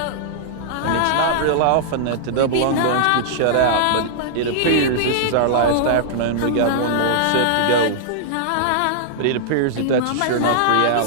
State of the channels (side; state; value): both; different; correlation -0.01